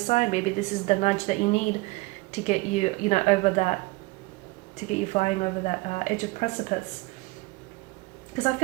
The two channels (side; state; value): left; quieter; 23.4 dB